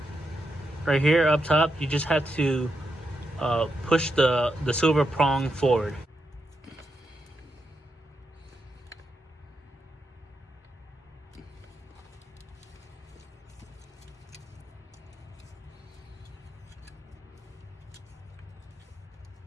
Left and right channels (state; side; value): normal; both; correlation 0.84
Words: right here up top, you just have to push the silver prong forward.